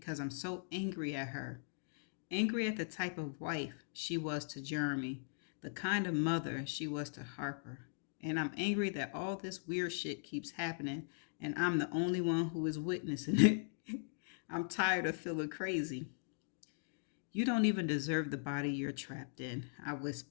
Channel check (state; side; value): silent; right; digital silence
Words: I'm so angry at her. Angry at the type of wife she was to Jeremy, the kind of mother she was to Harper. And I'm angry that all this weird shit keeps happening and I'm the only one who is witnessing it. I'm tired of feeling crazy. You don't even deserve the body you're trapped in, I